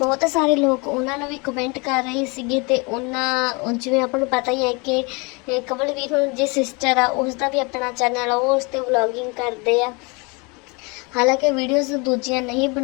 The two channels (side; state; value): right; quieter; 29.3 dB